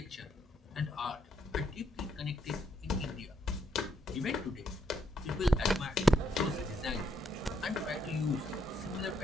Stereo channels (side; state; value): both; normal; correlation 0.76